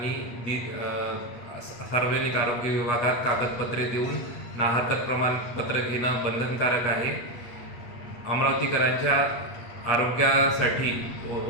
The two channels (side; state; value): right; late; 8.4 ms